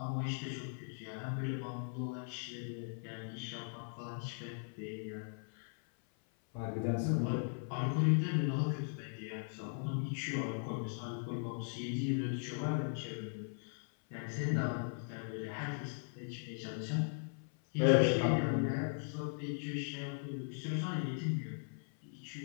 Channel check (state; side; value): silent; right; 52 dB below the other